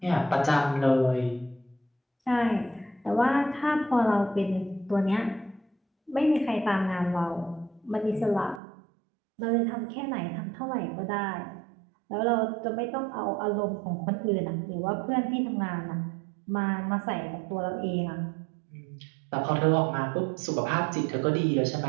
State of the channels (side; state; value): left; drops out; at 8.6 s